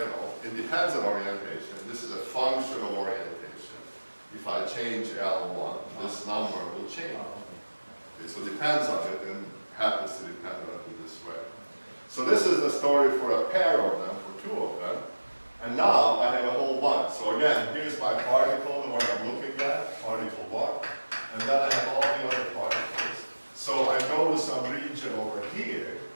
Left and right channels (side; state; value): both; inverted; correlation -1.00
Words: know, it depends on orientation. This is a function of orientation. If I change L1, this number will change. Okay, so it depends on it and happens to depend on it in this way. So this is the story for a pair of them, for two of them. And now I have a whole bunch. So again, here's my particle, the one I'm looking at, particle 1. And then I have all the other particles. So I go to some some region over here,